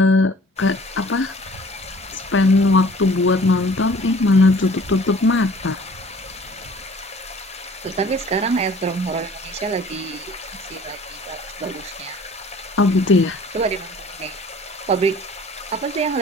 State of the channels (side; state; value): both; normal; correlation 0.51